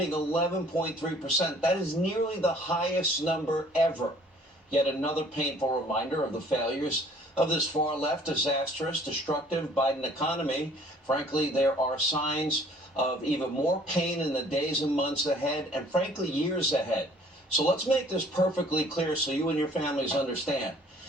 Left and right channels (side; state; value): both; normal; correlation 0.56